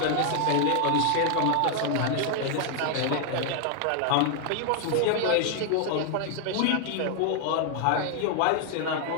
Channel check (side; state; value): both; different; correlation 0.00